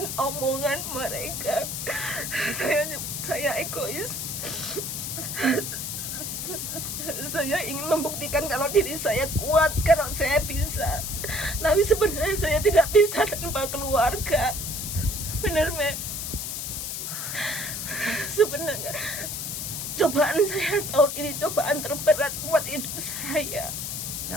omongan mereka. Saya egois. Saya ingin membuktikan kalau diri saya kuat, kalau saya bisa. Tapi sebenarnya saya tidak bisa tanpa keluarga. Benar, Mem? Sebenarnya cobaan saya tahun ini cobaan terberat buat hidup saya.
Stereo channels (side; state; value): left; noise; hiss, 4 dB below the sound